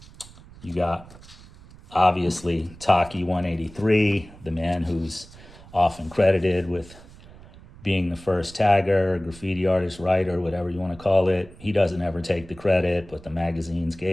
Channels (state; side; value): noise; right; rumble, 20 dB below the sound